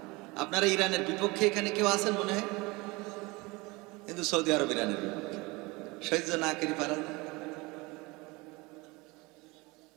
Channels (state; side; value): quieter; left; 24.2 dB